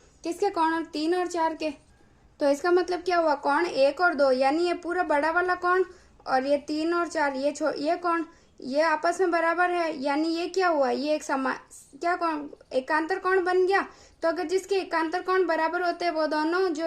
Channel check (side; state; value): both; identical; correlation 1.00